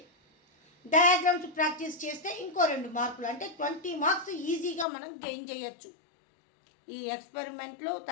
డయాగ్రామ్స్ ప్రాక్టీస్ చేస్తే ఇంకో 2 మార్కులు, అంటే 20 మార్క్స్ ఈజీగా మనం గెయిన్ చేయొచ్చు. ఈ ఎక్స్పెరిమెంట్లు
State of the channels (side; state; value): right; drops out; at 4.9 s